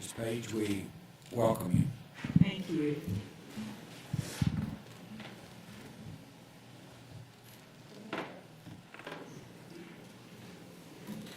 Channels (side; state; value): both; identical; correlation 1.00